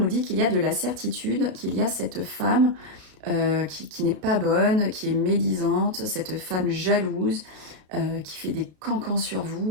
dit qu'il y a de la certitude, qu'il y a cette femme qui n'est pas bonne, qui est médisante, cette femme jalouse, qui fait des cancans sur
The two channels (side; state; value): left; late; 33 ms